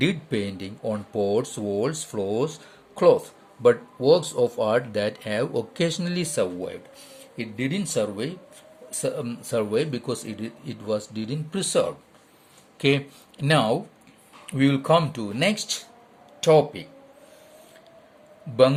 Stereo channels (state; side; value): identical; both; correlation 1.00